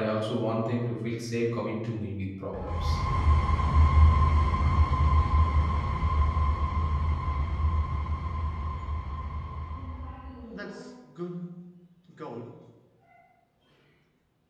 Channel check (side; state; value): both; identical; correlation 1.00